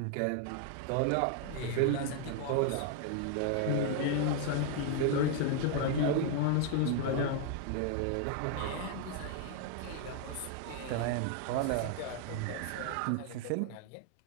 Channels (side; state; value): both; different; correlation 0.00